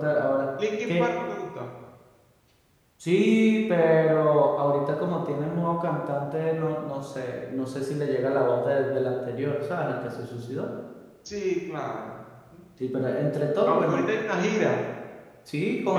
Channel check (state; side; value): identical; both; correlation 1.00